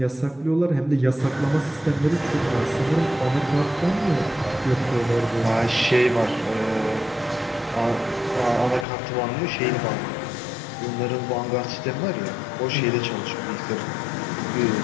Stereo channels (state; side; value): drops out; right; at 8.8 s